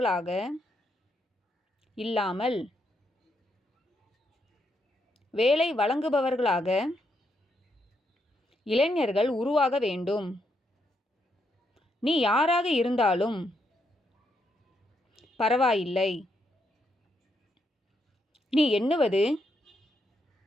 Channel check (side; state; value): both; normal; correlation 0.78